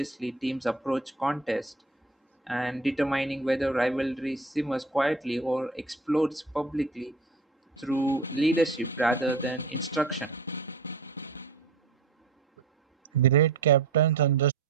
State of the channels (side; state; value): left; quieter; 3.7 dB